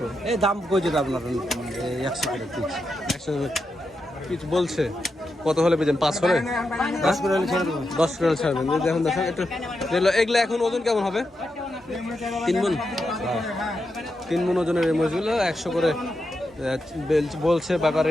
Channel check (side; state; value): both; normal; correlation 0.86